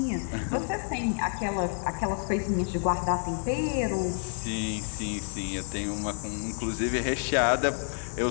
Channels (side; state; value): right; silent; 56 dB below the other